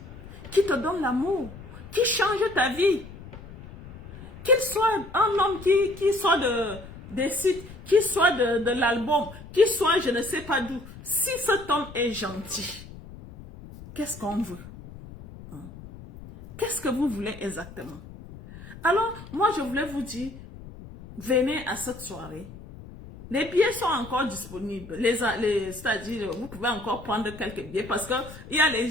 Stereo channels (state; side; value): noise; left; rumble, 16 dB below the sound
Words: qui te donne l'amour, qui change ta vie. Qu'il soit un homme qui soit des sites, qui soit de l'album, qui soit je ne sais pas d'où. Si cet homme est gentil, qu'est-ce qu'on veut? Qu'est-ce que vous voulez exactement? Alors, moi, je voulais vous dire, venez à cette soirée. Les billets sont encore disponibles. C'est-à-dire, vous pouvez encore prendre quelques billets parce qu'il y a les